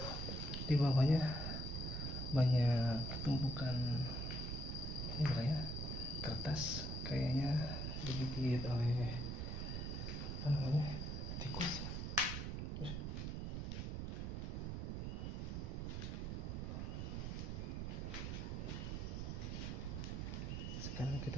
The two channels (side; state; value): right; noise; rumble, 2 dB below the sound